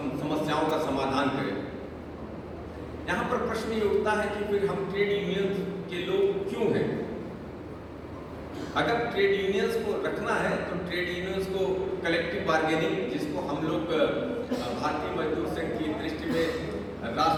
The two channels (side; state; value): both; identical; correlation 1.00